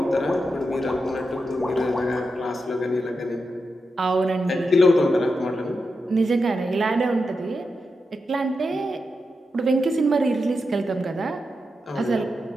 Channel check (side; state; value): both; normal; correlation 0.88